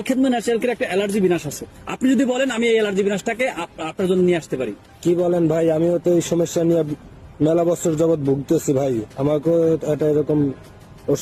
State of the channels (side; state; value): both; identical; correlation 1.00